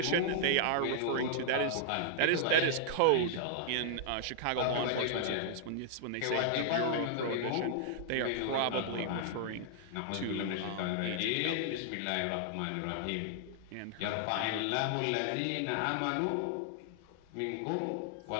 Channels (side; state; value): both; different; correlation -0.01